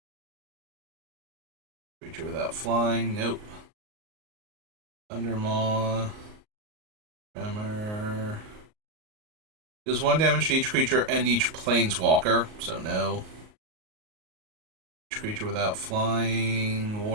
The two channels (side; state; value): left; late; 38 ms